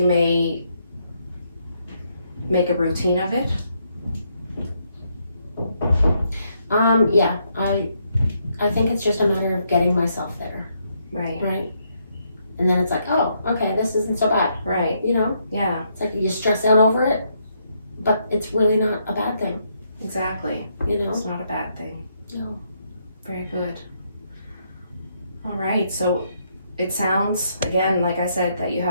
may make a routine of it? Yeah, I think it's just a matter of getting myself there, Right. right? And then it's like, oh, okay, this isn't so bad, Right. you know? Yeah. It's like you stress out over it, but it's really not a bad thing, Exactly. you know? It's not a bad thing. No. Very good. All right. So it sounds, again, like I said, that you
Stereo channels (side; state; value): both; inverted; correlation -0.75